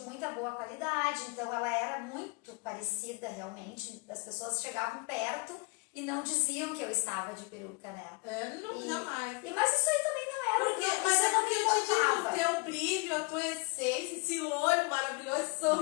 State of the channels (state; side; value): quieter; right; 29.1 dB